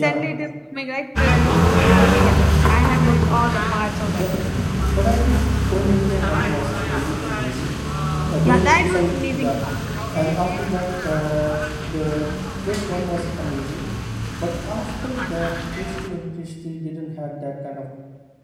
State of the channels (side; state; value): both; identical; correlation 1.00